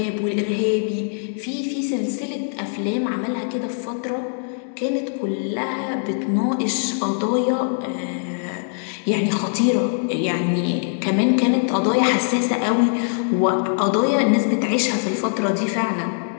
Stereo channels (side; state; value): right; silent; digital silence